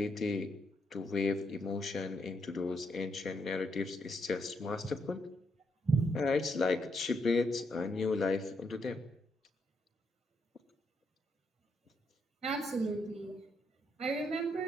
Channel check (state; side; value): normal; both; correlation 0.78